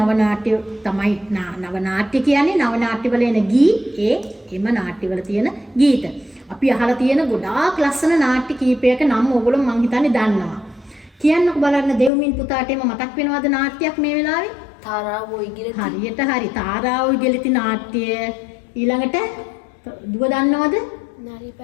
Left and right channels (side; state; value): right; drops out; at 12.1 s